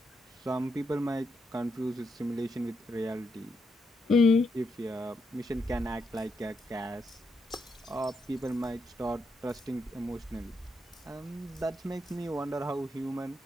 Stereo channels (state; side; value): normal; both; correlation 0.81